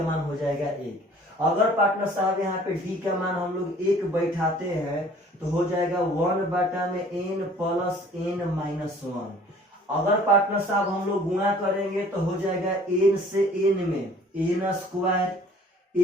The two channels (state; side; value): normal; both; correlation 0.52